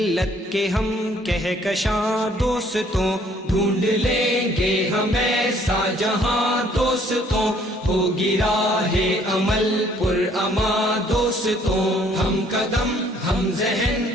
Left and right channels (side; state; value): both; normal; correlation 0.61